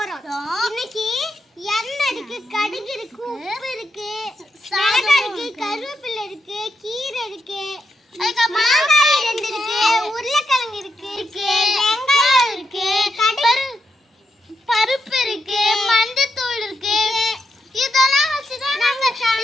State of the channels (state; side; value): normal; both; correlation 0.83